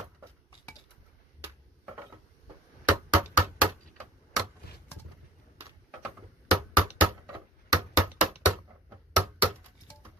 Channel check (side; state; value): both; normal; correlation 0.49